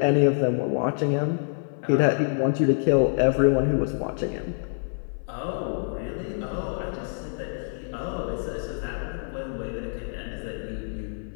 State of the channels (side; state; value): right; silent; 61 dB below the other